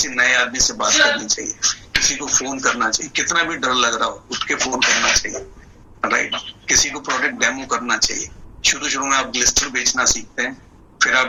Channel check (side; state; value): both; identical; correlation 1.00